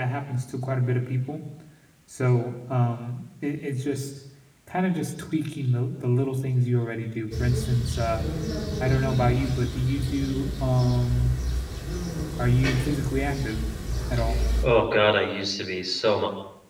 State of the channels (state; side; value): identical; both; correlation 1.00